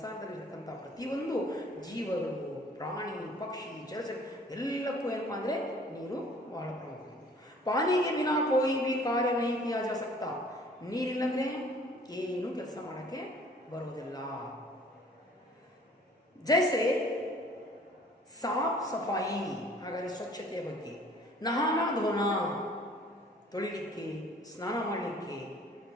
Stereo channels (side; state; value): both; normal; correlation 0.53